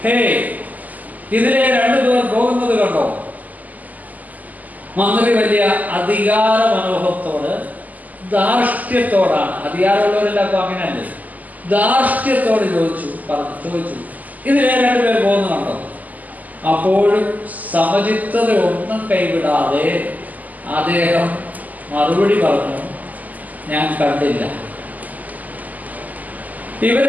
ഹേ, ഇതിലെ രണ്ടുപേർ പോകുന്നത് കണ്ടോ? മന്ത്രി വലിയ അധികാര മനോഭത്തോട്, ധാർഷ്ട്യത്തോടാണ്, അധികാരമുള്ളവരെല്ലാം അപ്പൊ അങ്ങനെയല്ലേ, ധാർഷ്ട്യത്തോട് ചോദിച്ചു, ഇതിലെ രണ്ടുപേർ പോകുന്നത് കണ്ടോ? അപ്പോഴും സമചിത്തത ഒന്നും കൈവിടാതെ അദ്ദേഹം മറുപടി പറഞ്ഞു, ഞാൻ കണ്ടില്ല. ഇവർ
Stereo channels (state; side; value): late; left; 0.079 ms